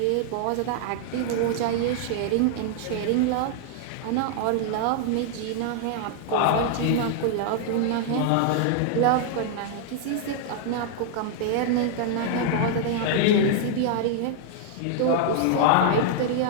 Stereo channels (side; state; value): both; different; correlation 0.00